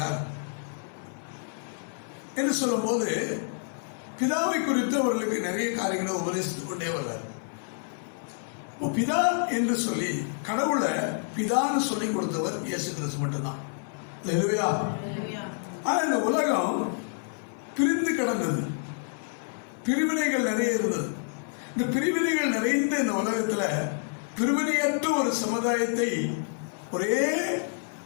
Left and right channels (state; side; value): silent; right; 59 dB below the other